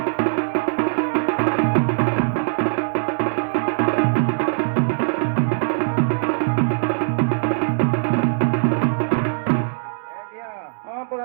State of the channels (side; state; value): left; silent; digital silence